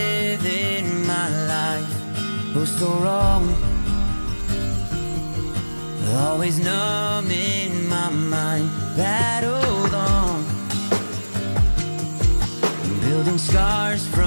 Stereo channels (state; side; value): inverted; both; correlation -1.00